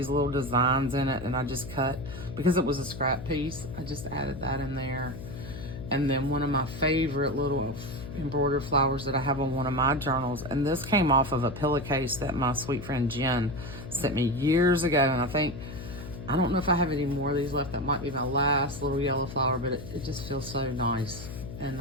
little designs in it, and I just cut, because it was a scrap piece, I just added that in there. And then one of my favorite little embroidered flowers that I have on one of my journals, and this came off of a pillowcase that my sweet friend Jen sent me years ago, and I don't know if I have any more of these left. That might be my last little yellow flower, but it just feels so nice.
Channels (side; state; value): left; noise; hum, 11 dB below the sound